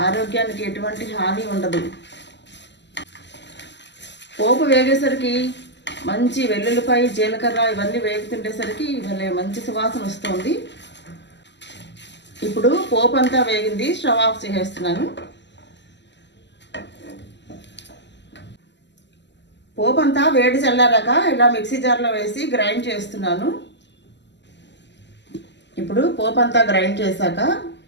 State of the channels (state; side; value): late; right; 0.51 ms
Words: ఆరోగ్యానికి ఎటువంటి హాని ఉండదు. పోపు వేగేసరికి మంచి వెల్లుల్లిపాయ, జీలకర్ర ఇవన్నీ వేగుతుండేసరికి ఇవన్నీ మంచి సువాసన వస్తుంది. ఇప్పుడు పోపు అంతా వేగింది, స్టవ్ ఆఫ్ చేసేస్తున్నాను. పోపు అంతా వేడి చల్లారాక ఇలా మిక్సీ జార్లో వేసి గ్రైండ్ చేస్తున్నాను. ఇప్పుడు పోపు అంతా గ్రైండ్ చేశాక